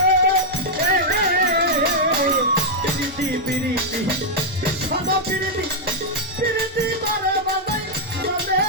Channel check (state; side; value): normal; both; correlation -0.04